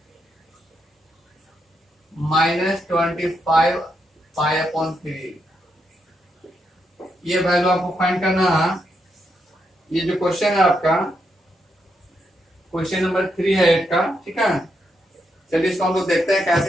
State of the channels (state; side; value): normal; both; correlation 0.81